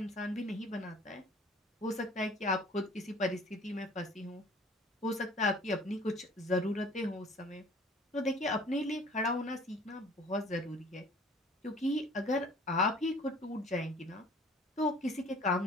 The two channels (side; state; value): both; normal; correlation 0.51